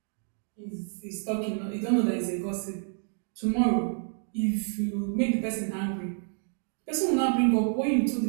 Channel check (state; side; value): silent; left; 58 dB below the other